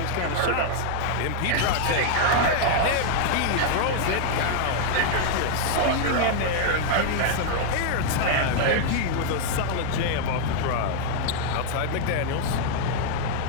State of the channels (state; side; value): different; both; correlation 0.00